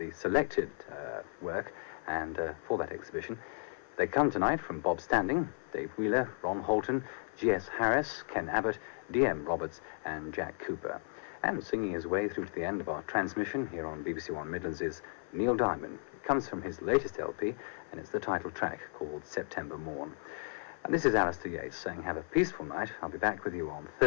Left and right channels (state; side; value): silent; right; 55 dB below the other